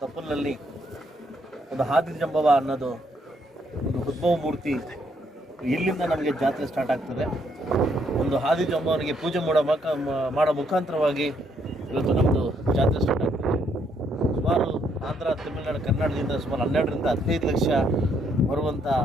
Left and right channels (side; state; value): both; normal; correlation 0.71